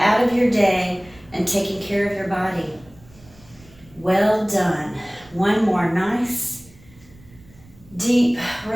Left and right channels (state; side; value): noise; right; rumble, 25 dB below the sound